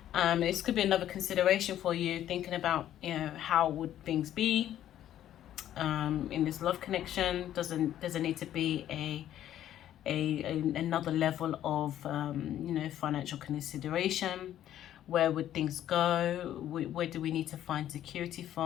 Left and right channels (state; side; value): quieter; right; 11.7 dB